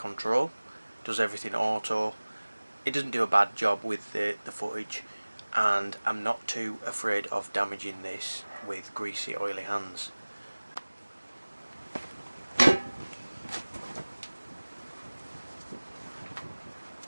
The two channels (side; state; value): both; inverted; correlation -1.00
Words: does everything auto, it doesn't do a bad job with the footage, and I'm not too afraid of damaging this with greasy oily hands.